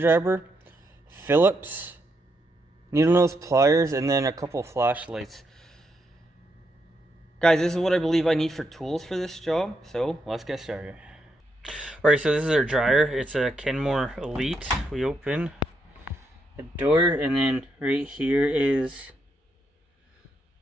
Phillips, needle nose pliers, and then a couple flashlights. Guys, this is what I believe I need for tools for this job, so let's get started. Alright, so this is our dryer. It's a Kenmore Elite. We open the door, and then right here is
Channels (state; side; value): normal; both; correlation 0.80